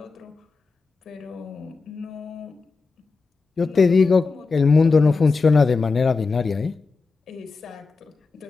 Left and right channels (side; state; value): right; quieter; 4.2 dB